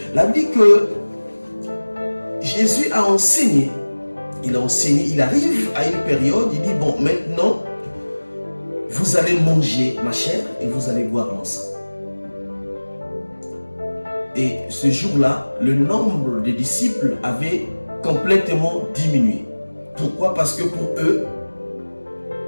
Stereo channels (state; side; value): inverted; both; correlation -1.00